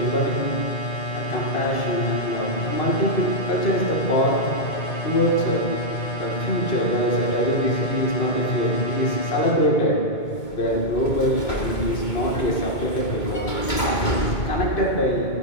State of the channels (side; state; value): right; late; 2.2 ms